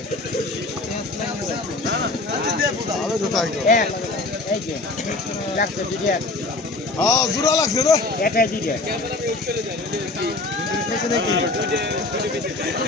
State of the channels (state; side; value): quieter; right; 3.2 dB